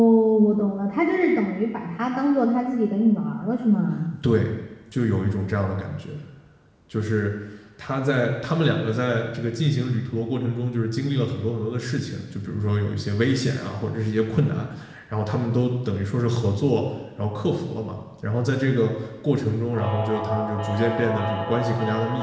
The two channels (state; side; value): identical; both; correlation 1.00